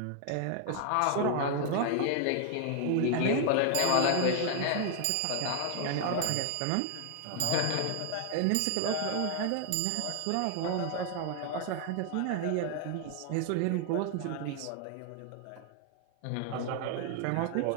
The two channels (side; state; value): both; different; correlation 0.00